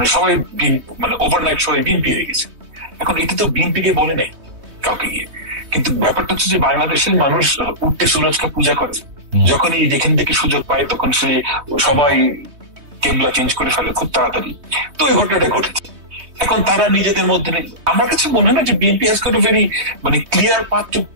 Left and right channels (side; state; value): left; late; 3.2 ms